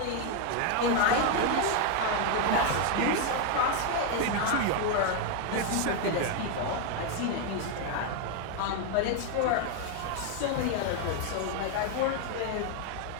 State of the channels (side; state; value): both; different; correlation 0.01